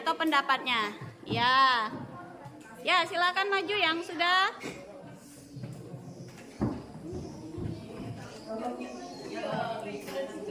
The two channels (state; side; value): identical; both; correlation 1.00